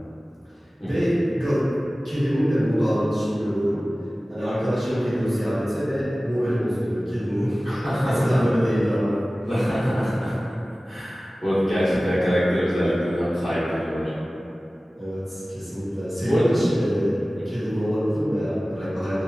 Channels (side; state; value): both; normal; correlation 0.97